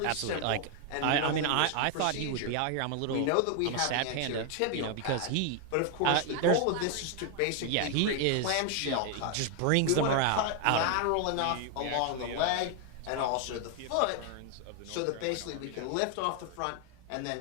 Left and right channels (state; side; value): different; both; correlation 0.00